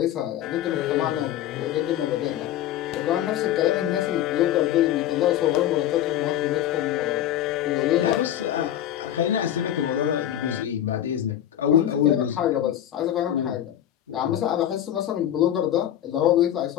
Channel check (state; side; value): quieter; right; 11.6 dB